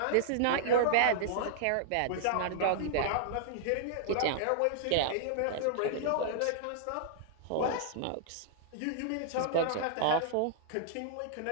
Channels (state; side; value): different; both; correlation -0.01